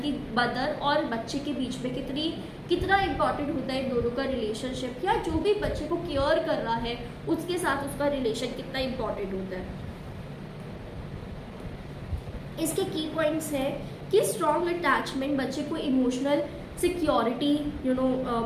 मदर और बच्चे के बीच में कितना इम्पॉर्टेंट होता है इन दोनों का रिलेशनशिप, या जो भी बच्चे को केयर कर रहा है उसके साथ उसका रिलेशन कितना इम्पॉर्टेंट होता है। इसके की पॉइंट्स है कि स्ट्रॉन्ग अटैचमेंट बच्चे को इमोशनल सिक्योरिटी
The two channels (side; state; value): both; identical; correlation 1.00